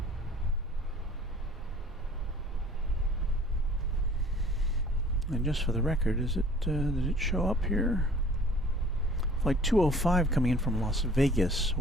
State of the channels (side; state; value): both; normal; correlation 0.51